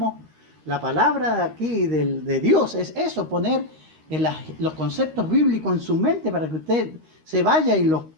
la palabra aquí de Dios es eso, poner los conceptos bíblicos en su mente para que usted se vaya y los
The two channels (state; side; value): late; left; 13 ms